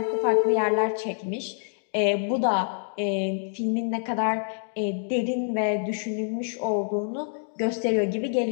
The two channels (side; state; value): right; silent; digital silence